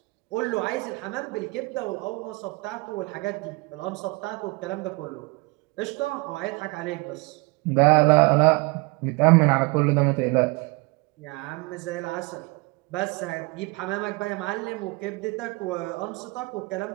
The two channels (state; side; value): quieter; left; 26.5 dB